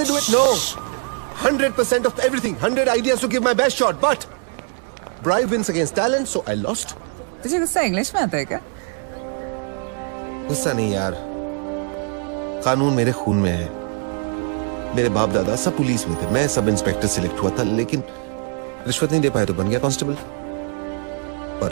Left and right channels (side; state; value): left; quieter; 39.0 dB